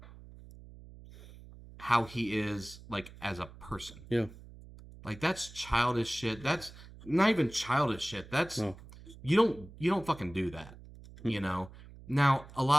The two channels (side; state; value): right; noise; hum, 18 dB below the sound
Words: how he is like as a person. Yeah. Like that's childish shit. That's not even childish shit. That's No. you don't fucking do that. Now a